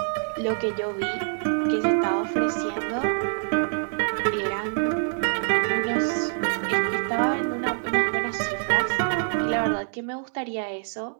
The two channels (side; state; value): left; silent; digital silence